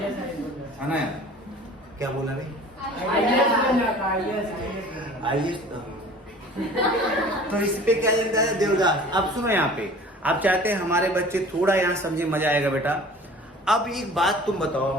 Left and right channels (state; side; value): normal; both; correlation 0.45